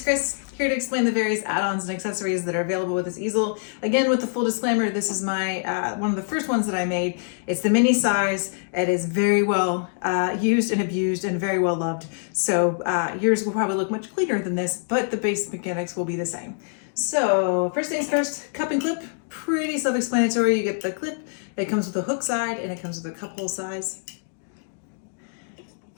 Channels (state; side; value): silent; right; digital silence